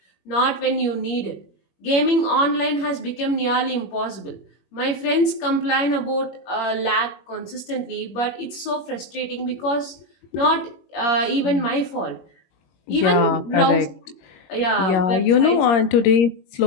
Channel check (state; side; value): late; right; 21 ms